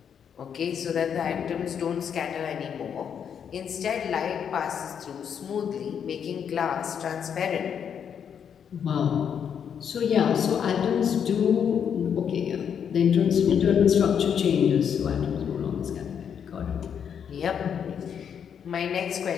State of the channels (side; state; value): right; quieter; 7.9 dB